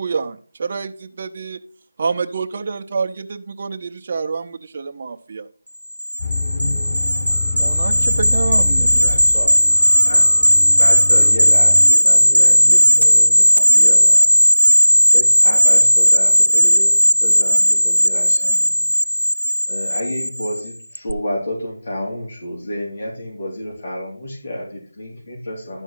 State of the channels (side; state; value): both; inverted; correlation -0.99